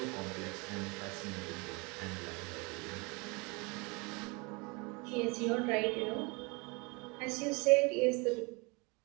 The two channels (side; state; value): left; quieter; 28.4 dB